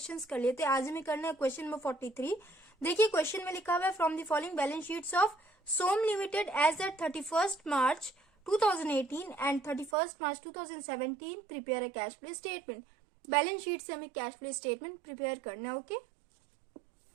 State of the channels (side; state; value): left; drops out; at 10.0 s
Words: कर लिए थे। आज हमें करना है क्वेश्चन नंबर 43। देखिए क्वेश्चन में लिखा हुआ है from the following balance sheets of Som limited as at 31st March 2018 and 31st March 2017 prepare a cash flow statement. Balance sheet से हमें कैश फ्लो स्टेटमेंट प्रिपेयर करना है। Okay,